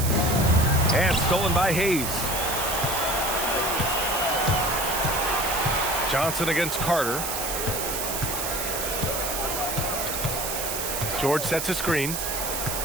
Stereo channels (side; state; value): right; noise; hiss, 3 dB below the sound